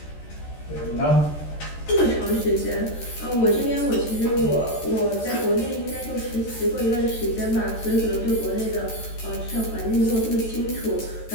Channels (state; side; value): late; right; 13 ms